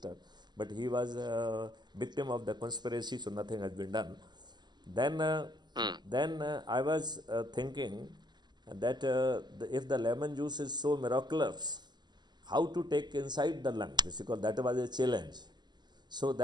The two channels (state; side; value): late; left; 0.21 ms